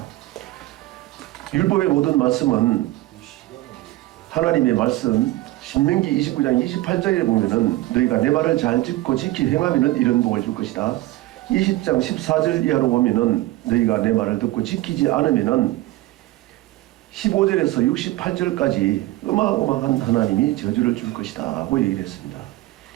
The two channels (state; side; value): quieter; left; 17.4 dB